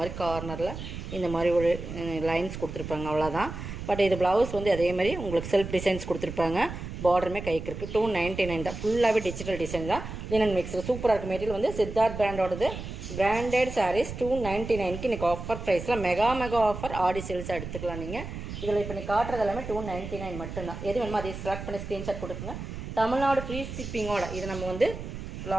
கார்னரில் இந்த மாதிரி ஒரு லைன்ஸ் கொடுத்துருப்பாங்க, அவ்வளோதான். பட் இது ப்ளவுஸ் அதே மாதிரி உங்களுக்கு செல்ஃப் டிசைன்ஸ் கொடுத்துருப்பாங்க. பார்டருமே கைக்கு இருக்குது. 299 தான். ஃபுல்லாகவே டிஜிட்டல் டிசைன் தான். லினன் மிக்ஸில் சூப்பராக இருக்குது. மெட்டீரியல் சித்தார்த் பிராண்டோடது பிராண்டட் சாரீஸ் 299க்கு இன்றைக்கி ஆஃபர் ப்ரைஸில் மெகா ஆஃபர் ஆடி சேல்ஸாக எடுத்துக்கலாம். நீங்கள் இதில் இப்போ நீ காட்டுறது எல்லாமே 299 மட்டும்தான். எது வேணுமோ அதை செலக்ட் பண்ணி ஸ்க்ரீன்ஷாட் கொடுக்குங்க. தமிழ்நாடு ஃப்ரீ ஷிப்பிங்கோட இது நம்ம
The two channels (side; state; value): right; noise; rumble, 8 dB below the sound